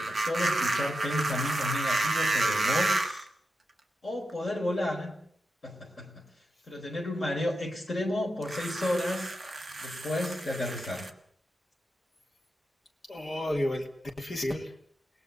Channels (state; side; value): normal; both; correlation 0.88